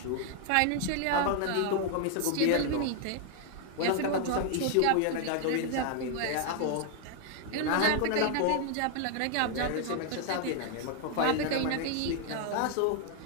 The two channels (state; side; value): different; both; correlation 0.00